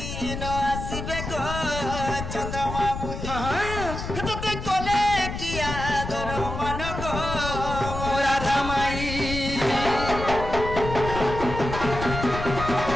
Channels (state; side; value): noise; left; rumble, 6 dB below the sound